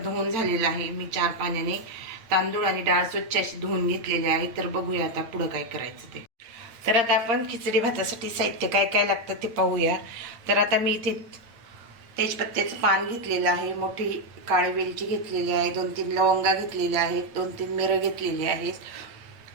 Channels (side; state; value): left; late; 8.9 ms